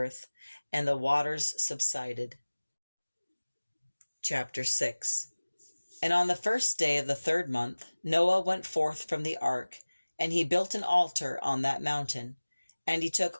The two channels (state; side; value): inverted; both; correlation -1.00